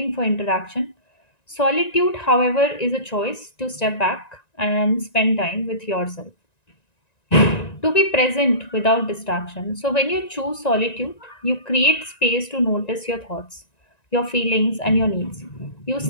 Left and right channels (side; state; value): right; late; 1.9 ms